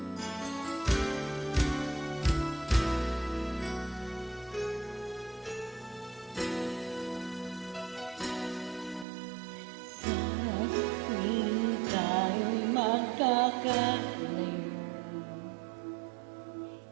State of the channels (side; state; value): left; drops out; at 9.1 s